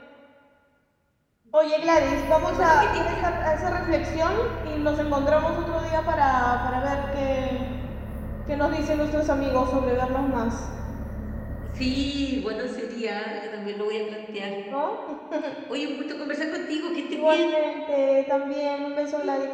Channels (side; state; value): both; identical; correlation 1.00